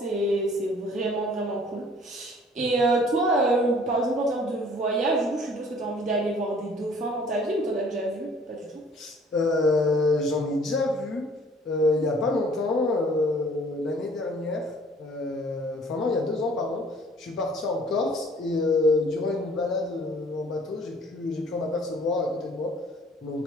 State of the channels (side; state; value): both; normal; correlation 0.55